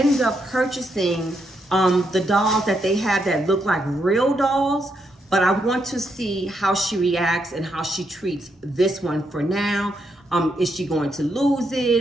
up purchasing the dolls that they have that look like real dolls, but I want to see how she reacts and how she treats this one for now. Is she going to lose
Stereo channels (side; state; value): both; normal; correlation 0.79